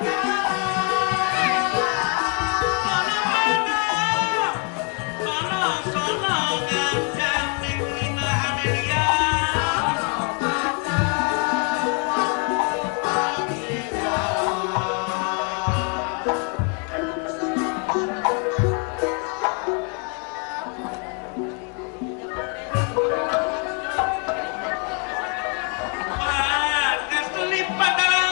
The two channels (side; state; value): right; quieter; 38.5 dB